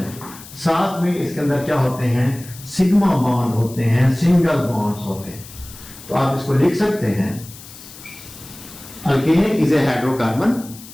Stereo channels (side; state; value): left; noise; hiss, 17 dB below the sound